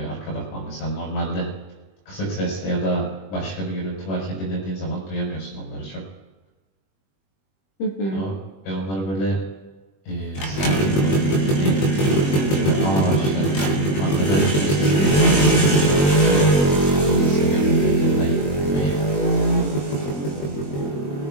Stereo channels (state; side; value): late; right; 21 ms